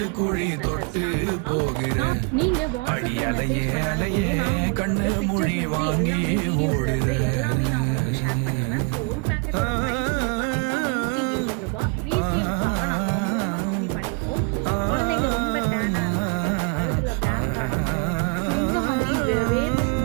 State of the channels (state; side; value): quieter; left; 32.2 dB